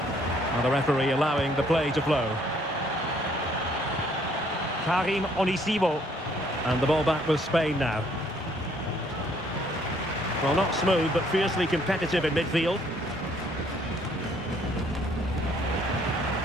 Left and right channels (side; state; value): both; normal; correlation 0.64